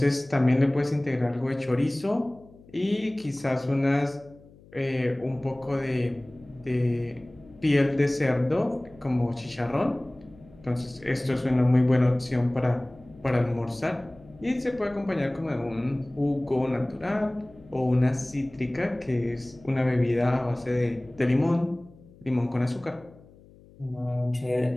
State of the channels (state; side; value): noise; left; hum, 24 dB below the sound